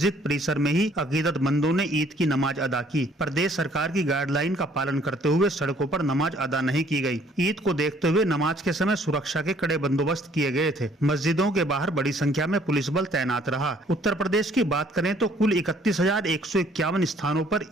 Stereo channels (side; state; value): both; normal; correlation 0.61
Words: परिसर में ही अकीदतमंदों ने ईद की नमाज अदा की। प्रदेश सरकार की गाइडलाइन का पालन करते हुए सड़कों पर नमाज अदा नहीं की गई। ईद को देखते हुए नमाज के समय सुरक्षा के कड़े बंदोबस्त किए गए थे। मस्जिदों के बाहर बड़ी संख्या में पुलिस बल तैनात रहा। उत्तर प्रदेश की बात करें तो कुल 31,151 स्थानों पर